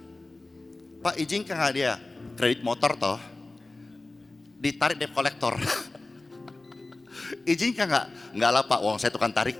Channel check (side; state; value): right; quieter; 3.1 dB